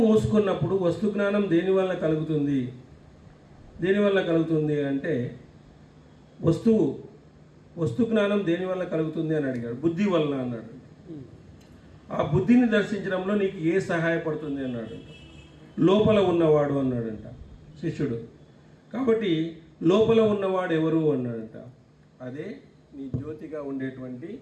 మూసుకున్నప్పుడు వస్తు జ్ఞానం దేని వల్ల కలుగుతుంది అంటే వస్తు జ్ఞానం దేని వల్ల కలుగుతుంది అని అడిగాడు. బుద్ధి వలన అన్నాడు. ఆ బుద్ధిని దర్శించడంలో నీకు ఏ సహాయపడుతుంది అన్నాడంట. లోపల ఉన్నవాడు అన్నాడంట శిష్యుడు. కాబట్టి లోపల ఉన్నవాడు ఎవరు అన్నాడంట. అదే నీ జ్యోతిగా ఉండేటువంటి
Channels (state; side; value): identical; both; correlation 1.00